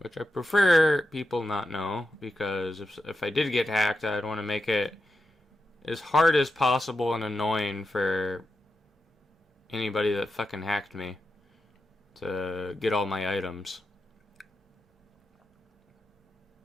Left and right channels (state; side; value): normal; both; correlation 0.88